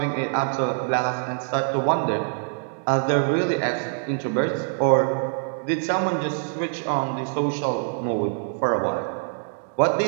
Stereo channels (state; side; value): silent; left; digital silence